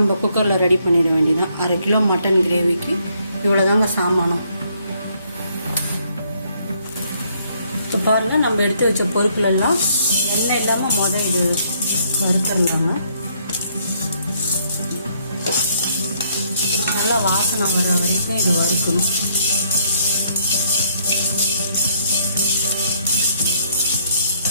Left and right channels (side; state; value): both; inverted; correlation -0.69